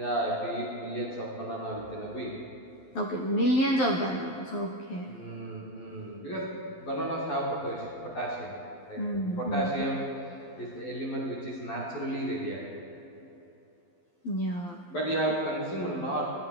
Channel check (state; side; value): late; right; 12 ms